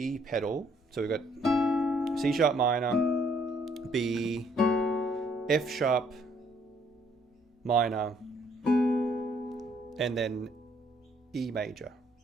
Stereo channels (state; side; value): normal; both; correlation 0.66